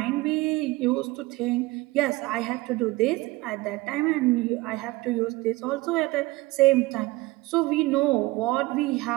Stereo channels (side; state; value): left; quieter; 20.6 dB